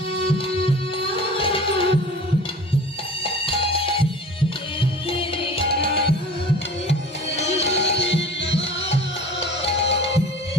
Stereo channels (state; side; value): normal; both; correlation 0.41